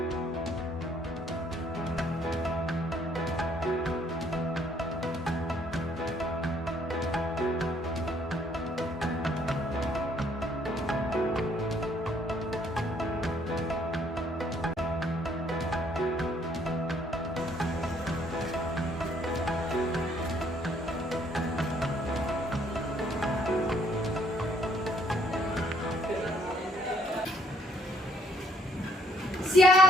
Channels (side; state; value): both; normal; correlation 0.66